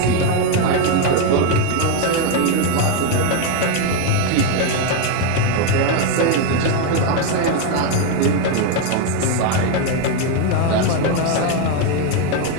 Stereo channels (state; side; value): different; both; correlation 0.01